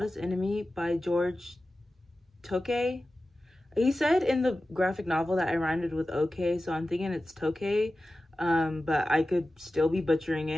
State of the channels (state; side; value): normal; both; correlation 0.94